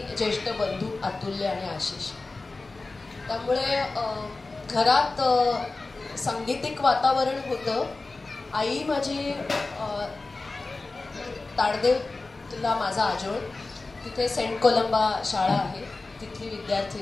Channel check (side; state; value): right; quieter; 3.5 dB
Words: ज्येष्ठ बंधू अतुल्य आणि आशिष. त्यामुळे घरात सांगीतिक वातावरण होतं. आई माझी ताडदेवला माझा आजोळ, तिथे सेंट कोलंबा शाळा आहे, तिथली